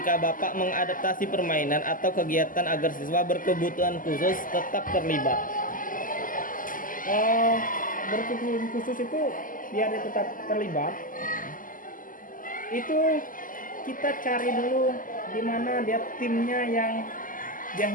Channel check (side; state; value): right; late; 0.39 ms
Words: Bapak mengadaptasi permainan atau kegiatan agar siswa berkebutuhan khusus tetap terlibat? Berkebutuhan khusus itu biar dia tetap terlibat, itu kita cari dulu di mana dia timnya yang dia